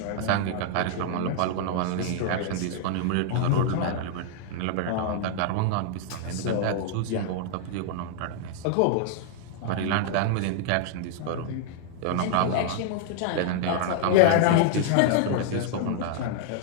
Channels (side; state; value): both; different; correlation -0.01